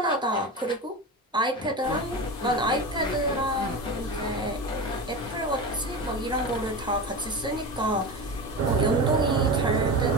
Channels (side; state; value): both; normal; correlation 0.25